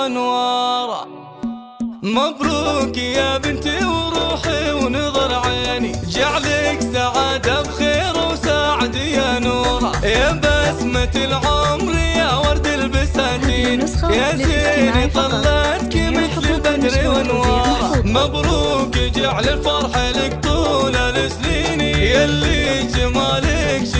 مبروك يا بنتي وروحي ونظر عيني، جعلك سعادة بخير وسعد يا نوره، يا بسمة العمر يا ورد البساتين، يا زين طلعتك مثل البدر وانواره. مبروك جعل الفرح لك طول السنين، يلي جمالك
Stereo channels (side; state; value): both; identical; correlation 1.00